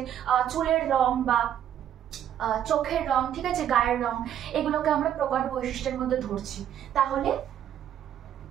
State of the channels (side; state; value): left; quieter; 10.3 dB